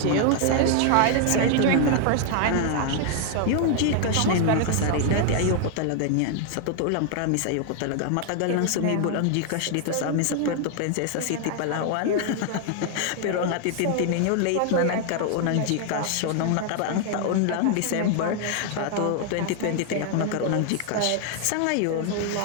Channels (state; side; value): different; both; correlation 0.00